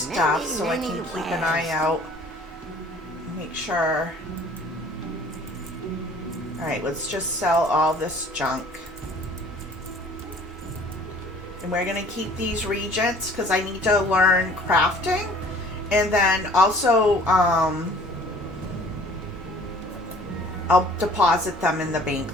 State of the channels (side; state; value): both; normal; correlation 0.52